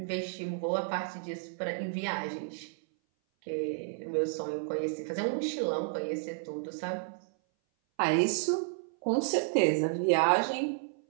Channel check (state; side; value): silent; left; 57 dB below the other